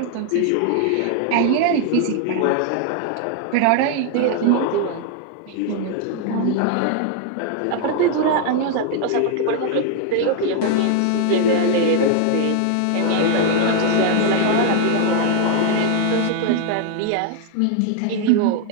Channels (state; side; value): different; both; correlation 0.00